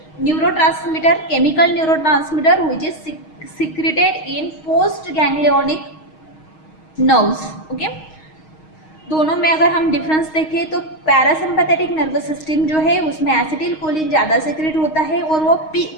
neurotransmitter, chemical neurotransmitter which is secreted in post ganglionic nerves, okay. दोनों में अगर हम डिफरेंस देखें तो पैरासिम्पैथेटिक नर्वस सिस्टम जो है उसमें एसिटिलकोलिन ज़्यादा सीक्रेट होता है और वो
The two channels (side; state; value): right; late; 6.4 ms